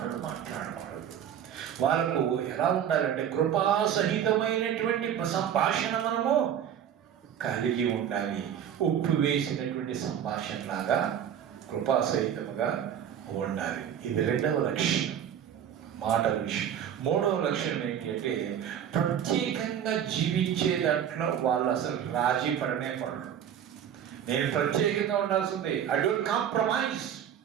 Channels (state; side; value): quieter; left; 9.3 dB